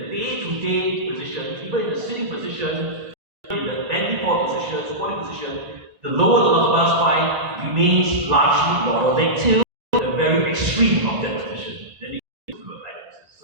day-to-day position, even in the sitting position, in the bending forward position, squatting position, the lower lumbar spine remains largely lordotic till the very extreme of that position. Then it goes to a kyphosis. So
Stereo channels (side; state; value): left; late; 1.4 ms